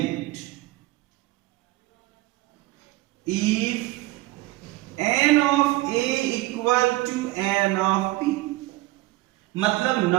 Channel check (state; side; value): quieter; left; 18.8 dB